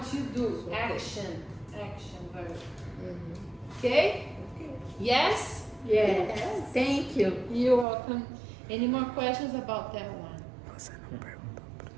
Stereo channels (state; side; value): drops out; left; at 7.9 s